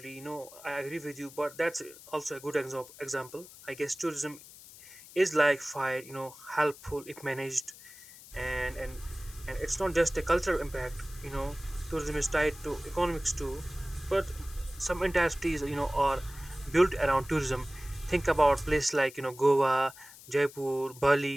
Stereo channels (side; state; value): left; noise; hiss, 19 dB below the sound